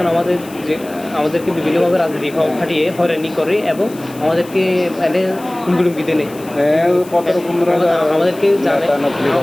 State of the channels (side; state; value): left; noise; hiss, 21 dB below the sound